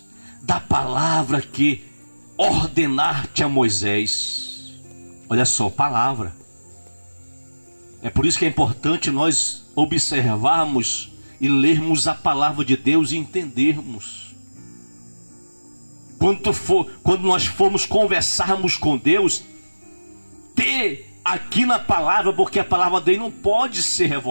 da palavra que ordenaste a Moisés. Olha só, palavra. É por isso que é importante nós observarmos e lermos a palavra de Deus e entendermos. Quando nós formos conversarmos com Deus, ter aqui na palavra, porque a palavra dele não pode ser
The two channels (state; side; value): inverted; both; correlation -1.00